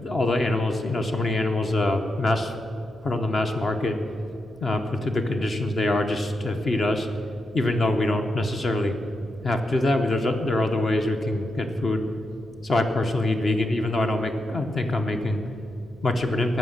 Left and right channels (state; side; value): noise; left; hum, 26 dB below the sound